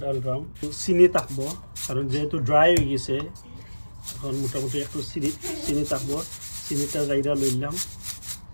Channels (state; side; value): inverted; both; correlation -1.00